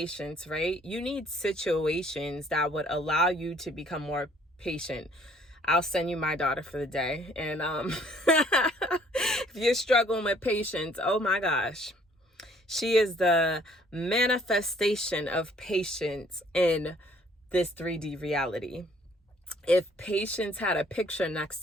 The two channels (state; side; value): normal; both; correlation 0.60